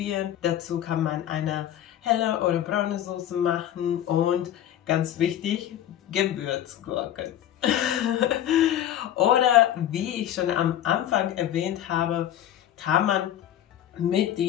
Dazu kann man eine helle oder braune Soße machen und ganz wichtig, Gewürzgurken. Oder wie ich schon am Anfang erwähnt habe, kann man mit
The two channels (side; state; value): right; quieter; 11.4 dB